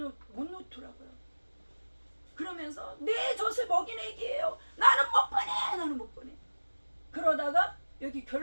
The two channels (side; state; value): both; inverted; correlation -1.00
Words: 그러면서 내 젖을 먹인 애기예요. 나는 못 보내. 그러다가 여기